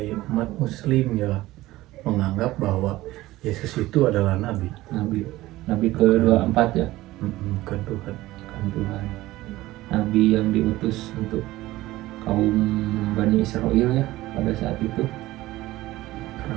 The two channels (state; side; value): quieter; left; 17.3 dB